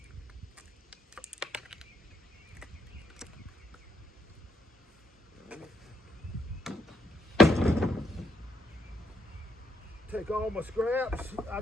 Take all my scraps. I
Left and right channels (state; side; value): normal; both; correlation 0.73